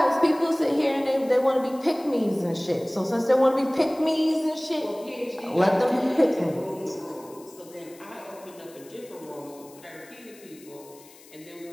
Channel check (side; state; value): left; noise; hiss, 23 dB below the sound